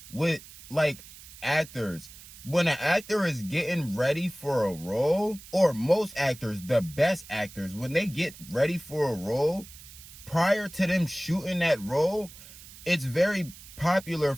with, like, actors. When an actor is getting ready for a role, or most actors, the best actors, when they get ready for a role, prior to them shooting that role, it's very popular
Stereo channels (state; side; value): noise; right; hiss, 18 dB below the sound